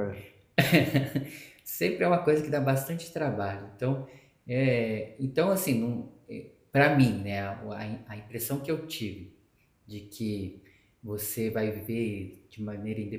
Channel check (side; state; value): both; identical; correlation 1.00